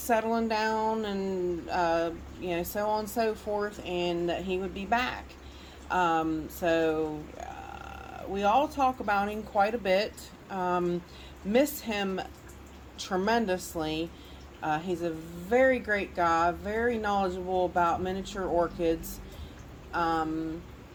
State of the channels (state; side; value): identical; both; correlation 1.00